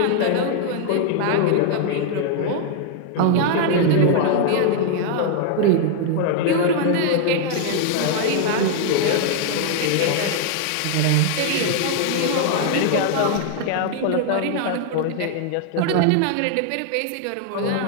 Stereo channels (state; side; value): different; both; correlation 0.00